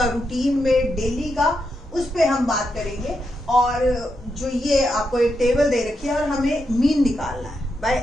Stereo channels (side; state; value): both; normal; correlation 0.84